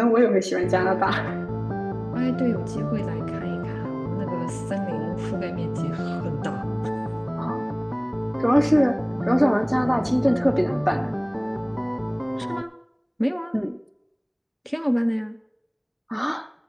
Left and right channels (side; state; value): both; identical; correlation 1.00